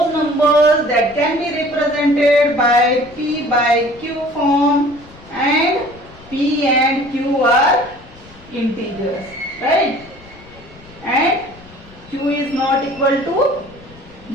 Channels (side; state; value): left; noise; rumble, 23 dB below the sound